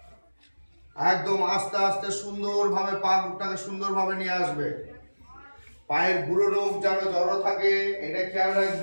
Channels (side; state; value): both; inverted; correlation -1.00